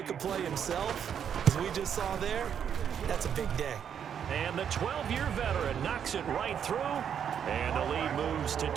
a play himself, as we just saw there, that's a big day. And the 12-year veteran knocks it right through, and the lead moves to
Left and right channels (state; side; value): quieter; left; 8.3 dB